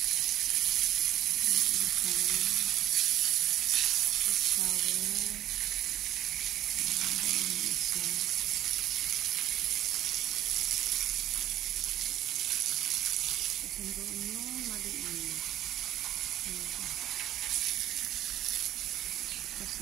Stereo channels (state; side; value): quieter; left; 12.9 dB